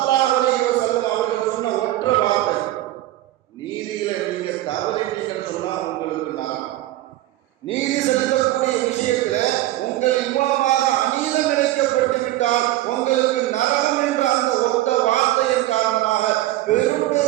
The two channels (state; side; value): quieter; left; 15.6 dB